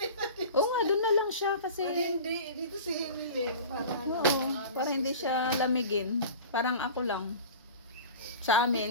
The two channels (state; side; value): inverted; both; correlation -0.37